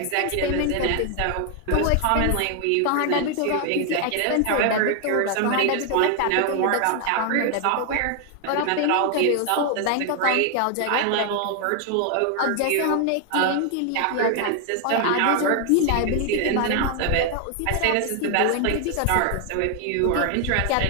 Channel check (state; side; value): different; both; correlation 0.00